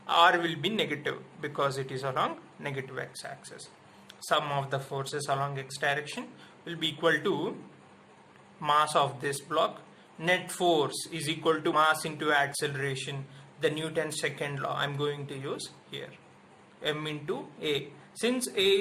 R will be negative because it is along negative x axis. Sum of the forces along x direction will be equal to mass of this block. Net force is equal to mass into acceleration, the Newton's second law I am going to use here, m into a. Since a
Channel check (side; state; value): both; identical; correlation 1.00